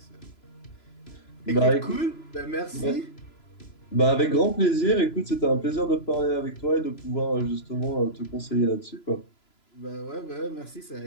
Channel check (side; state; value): right; late; 3.0 ms